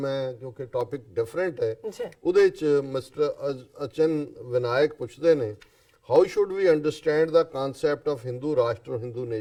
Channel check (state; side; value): identical; both; correlation 1.00